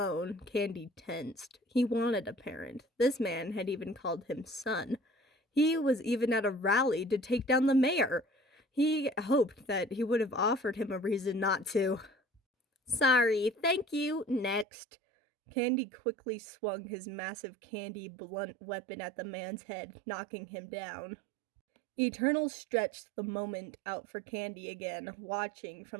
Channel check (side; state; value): left; drops out; at 14.7 s